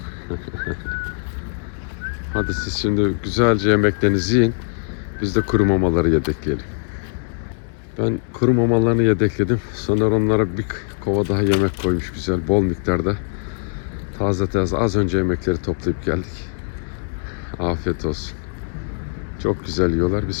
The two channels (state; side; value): silent; right; 61 dB below the other